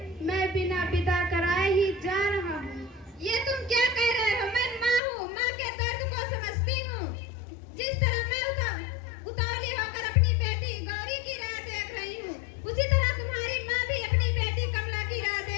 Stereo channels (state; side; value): drops out; right; at 5.0 s